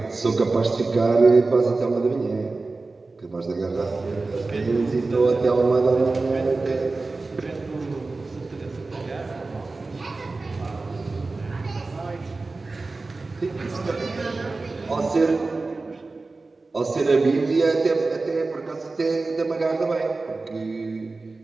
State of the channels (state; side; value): quieter; left; 3.6 dB